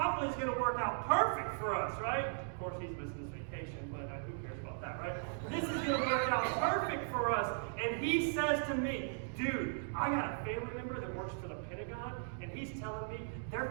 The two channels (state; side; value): silent; left; digital silence